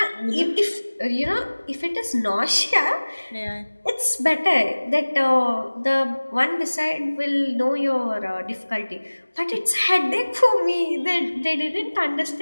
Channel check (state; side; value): inverted; both; correlation -1.00